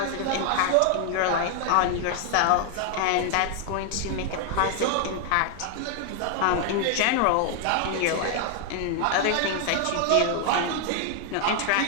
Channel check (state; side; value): different; both; correlation 0.00